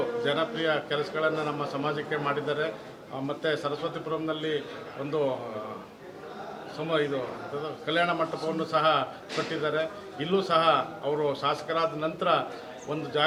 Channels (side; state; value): both; identical; correlation 1.00